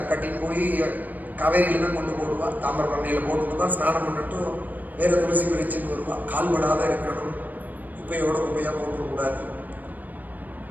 கட்டின்னு போய் காவேரியில தான் கொண்டு போடுவா. தாமிரபரணியில போட்டுட்டு தான் ஸ்நானம் பண்ணிட்டு வேற துளசி பிரிச்சுன்னு வருவா. கால்படாத இருக்கணும், குப்பையா போட்டுக்கூடாது.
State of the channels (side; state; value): left; late; 0.084 ms